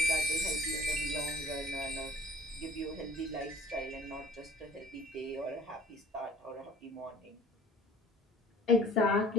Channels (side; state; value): both; normal; correlation 0.48